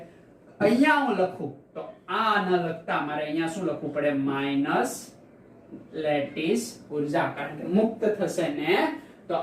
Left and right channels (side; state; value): both; identical; correlation 1.00